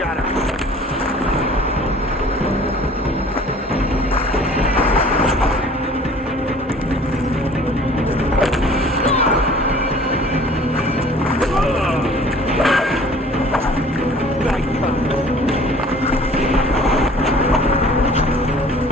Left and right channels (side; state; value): both; normal; correlation 0.50